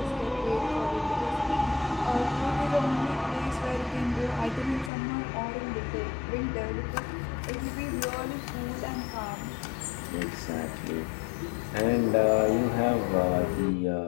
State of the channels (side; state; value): right; drops out; at 4.9 s